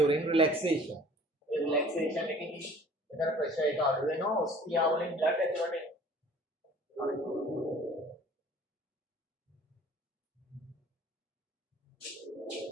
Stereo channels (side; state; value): both; normal; correlation 0.49